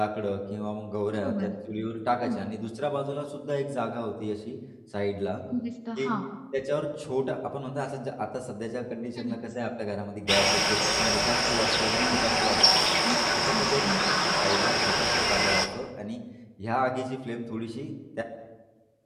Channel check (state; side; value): identical; both; correlation 1.00